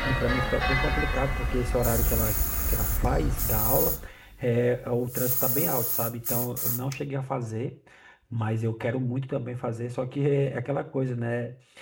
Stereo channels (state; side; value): identical; both; correlation 1.00